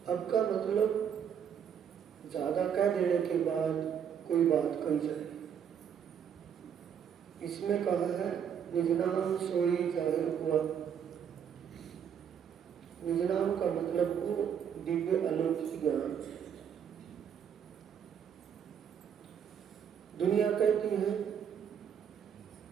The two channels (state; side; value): quieter; left; 8.1 dB